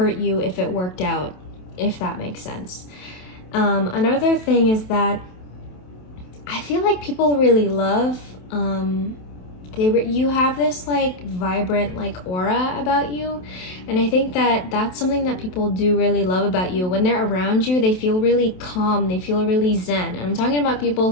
you if it worked out, if that makes sense. Another thing is that I feel like people really love, you have this like vibrant like aura about you, and I think that that's something that people do really love about you. When they're around you, they feel really calm, they feel really zen. And I'm talking about people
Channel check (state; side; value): late; right; 27 ms